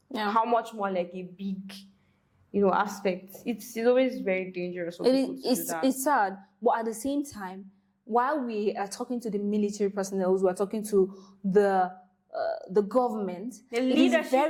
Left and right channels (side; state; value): both; identical; correlation 1.00